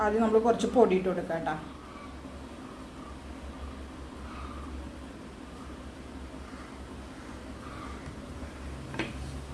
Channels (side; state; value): both; identical; correlation 1.00